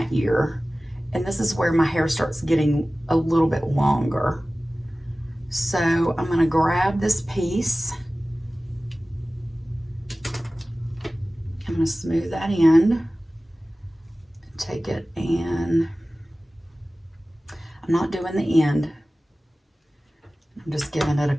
ear, and this is where my hair starts getting a little bit longer. So I'm gonna grab this piece I'm going to smooth that in. Take it and I'm not doing the end. I'm just giving it a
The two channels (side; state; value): both; normal; correlation 0.97